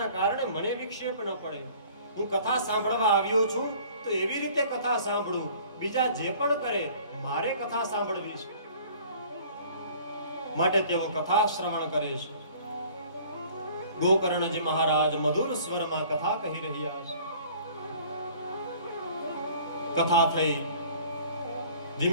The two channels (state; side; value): inverted; both; correlation -0.51